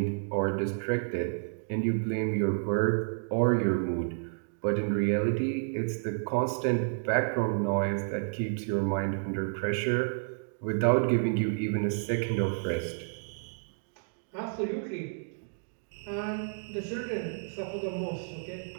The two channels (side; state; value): left; silent; digital silence